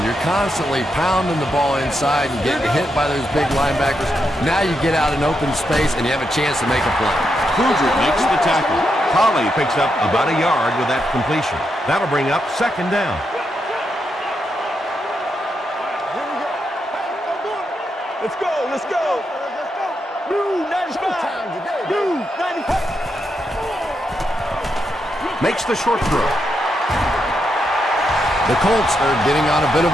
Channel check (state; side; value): normal; both; correlation 0.83